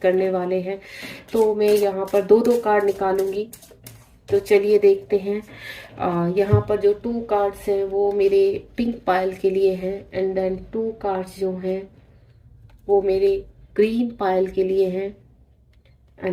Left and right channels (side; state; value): both; identical; correlation 1.00